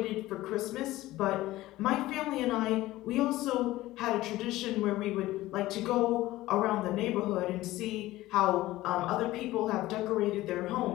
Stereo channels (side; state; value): right; quieter; 16.9 dB